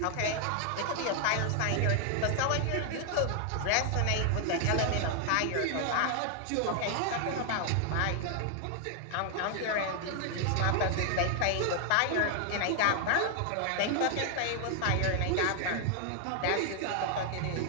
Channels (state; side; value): different; both; correlation 0.00